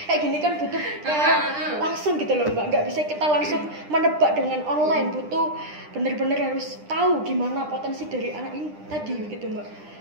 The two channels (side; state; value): left; late; 9.9 ms